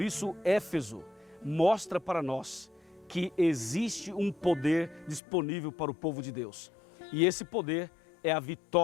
isso, Éfeso mostra para nós que existe um poder disponível para o povo de Deus. E esse poder é a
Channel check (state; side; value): drops out; right; at 5.2 s